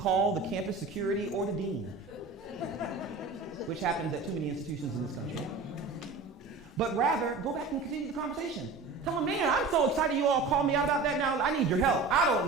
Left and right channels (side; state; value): left; quieter; 4.1 dB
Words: the campus security or the dean, which happens at too many institutions in this country. But rather, go back and continue the conversation. Tell them, man, I'm so excited you all called me out about that now. I need your help. I